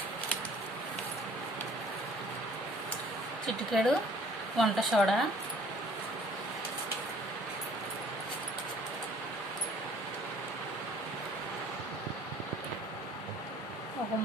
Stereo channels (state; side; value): normal; both; correlation 0.55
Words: చిటికెడు వంట సోడా, ఒక